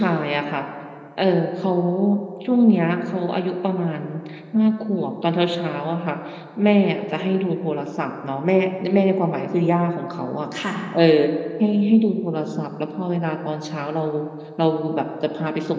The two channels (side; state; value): both; identical; correlation 1.00